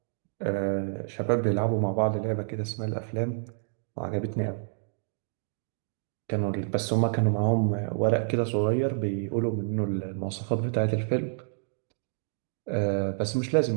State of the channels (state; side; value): silent; left; digital silence